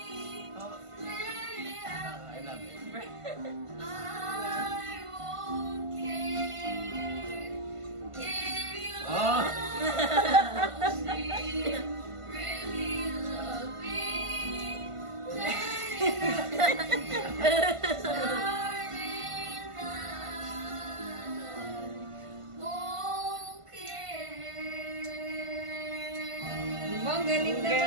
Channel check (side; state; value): left; late; 1.5 ms